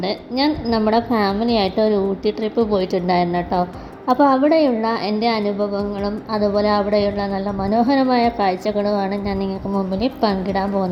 നമ്മുടെ ഫാമിലിയായിട്ട് ഒരു ഊട്ടി ട്രിപ്പ് പോയിട്ടുണ്ടായിരുന്നു കേട്ടോ. അപ്പോൾ അവിടെയുള്ള എൻ്റെ അനുഭവങ്ങളും അതുപോലെ അവിടെയുള്ള നല്ല മനോഹരമായ കാഴ്ചകളുമാണ് ഞാൻ നിങ്ങൾക്ക് മുമ്പിൽ പങ്കിടാൻ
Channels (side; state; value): both; identical; correlation 1.00